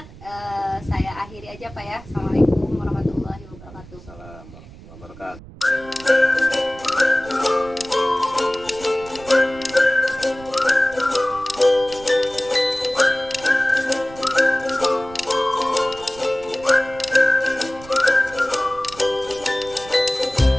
Saya akhiri aja Pak ya.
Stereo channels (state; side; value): noise; right; rumble, 19 dB below the sound